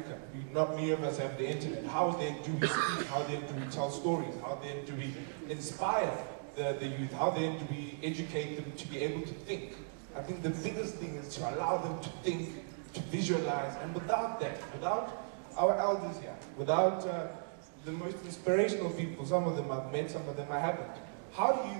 Not many of us have the internet. How then do we speak? How then do we tell stories? How then do we inspire the youth? How then do we educate them to be able to think I think the biggest thing is to allow them to think, to visualize, and without that, without our elders here, without the most inspirational people, some of them I've met, some of them I haven't, how do you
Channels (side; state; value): left; silent; digital silence